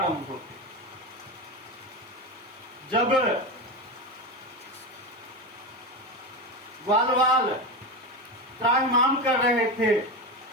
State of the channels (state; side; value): normal; both; correlation 0.19